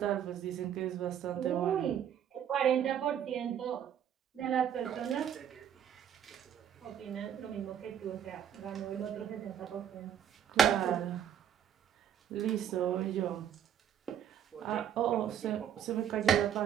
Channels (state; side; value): quieter; left; 9.1 dB